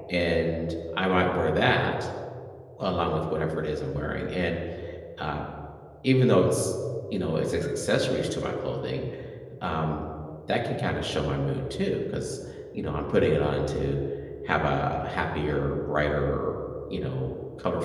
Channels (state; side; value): identical; both; correlation 1.00